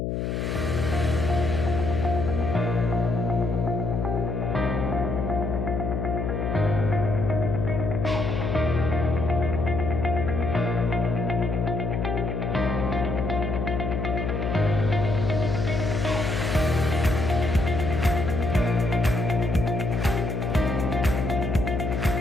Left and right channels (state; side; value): noise; left; hum, 2 dB below the sound